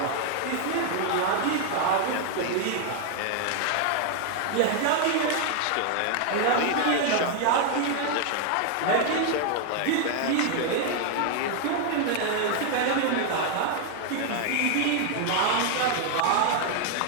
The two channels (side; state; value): both; different; correlation 0.00